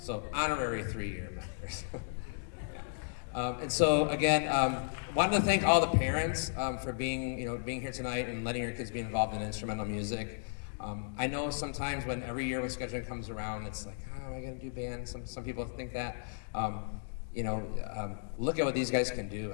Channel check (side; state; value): right; silent; digital silence